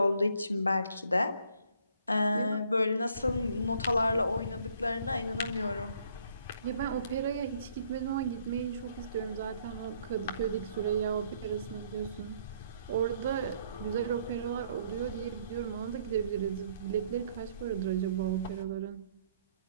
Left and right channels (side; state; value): both; inverted; correlation -0.65